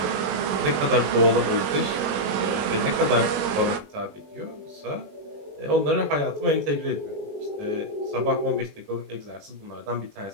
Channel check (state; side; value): late; left; 21 ms